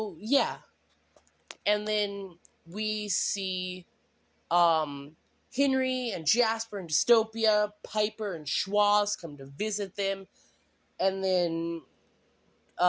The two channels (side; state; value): both; identical; correlation 1.00